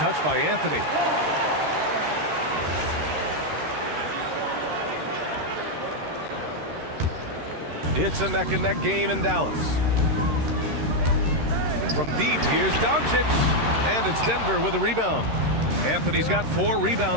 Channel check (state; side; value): late; left; 13 ms